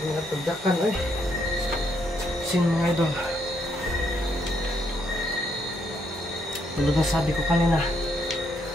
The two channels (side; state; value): both; normal; correlation 0.74